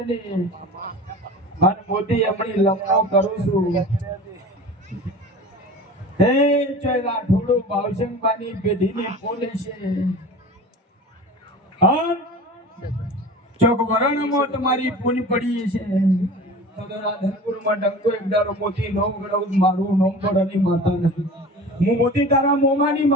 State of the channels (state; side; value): normal; both; correlation 0.37